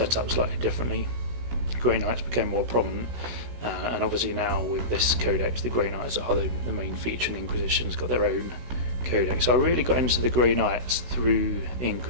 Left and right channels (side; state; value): left; late; 16 ms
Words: up slightly differently. Grey Knights became more prominent, and obviously now with this Codex, the Grey Knights are the main feature, and the Inquisition's got their own Codex. So I really got into the Grey Knights through the